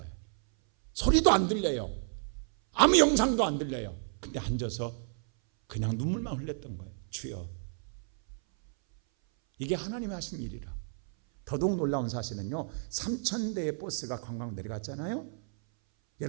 소리도 안 들려요. 아무 영상도 안 들려요. 근데 앉아서 그냥 눈물만 흘렸던 거예요. 주여. 이게 하나님이 하신 일이라. 더더욱 놀라운 사실은요, 3,000대의 버스가 관광 내려갔잖아요.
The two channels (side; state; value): left; silent; 57 dB below the other